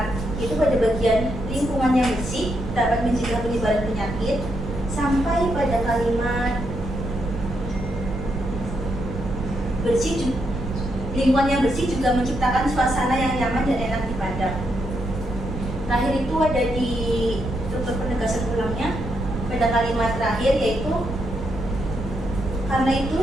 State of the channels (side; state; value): right; noise; rumble, 7 dB below the sound